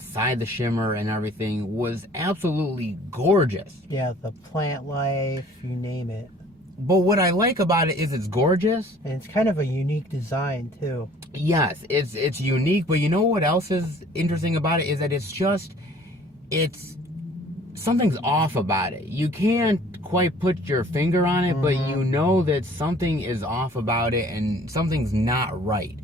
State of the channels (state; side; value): normal; both; correlation 0.53